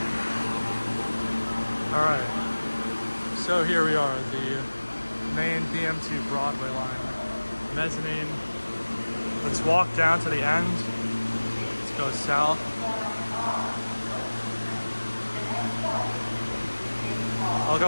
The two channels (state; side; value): inverted; both; correlation -1.00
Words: Alright. So here we are, the main BMT Broadway line. Mezzanine. Let's walk down to the end. Let's go south. I'll